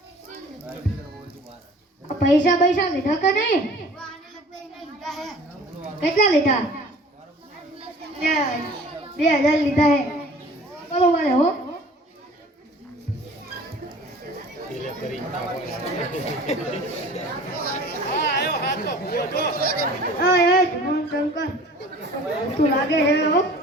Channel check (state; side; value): normal; both; correlation 0.46